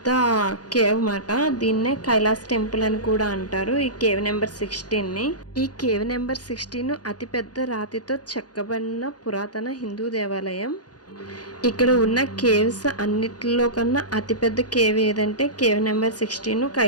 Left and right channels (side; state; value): right; late; 0.69 ms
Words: కేవ్ మాట. దీన్నే కైలాస్ టెంపుల్ అని కూడా అంటారు ఈ కేవ్ నెంబర్ 16ని. ఈ కేవ్ నెంబర్ 16 అతిపెద్ద రాతితో చెక్కబడిన పురాతన హిందూ దేవాలయం. ఇక్కడ ఉన్న కేవ్స్ అన్నిటిలో కన్నా అతిపెద్ద కేవ్ ఏదంటే కేవ్ నెంబర్ 16